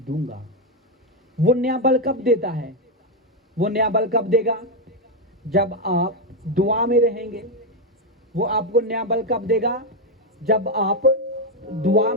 वो नया बल कब देता है? वो नया बल कब देगा? जब आप दुआ में रहेंगे। वो आपको नया बल कब देगा? जब आप दुआ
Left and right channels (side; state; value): both; normal; correlation 0.04